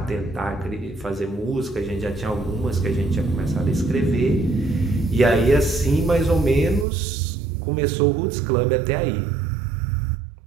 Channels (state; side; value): drops out; left; at 6.9 s